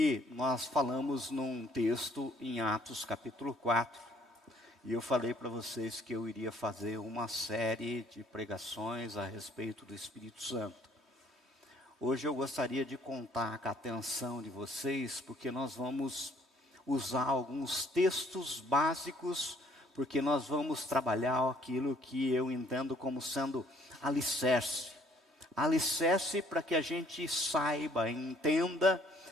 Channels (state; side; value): normal; both; correlation 0.61